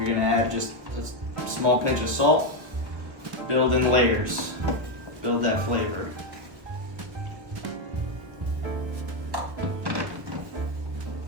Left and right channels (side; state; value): left; late; 1.3 ms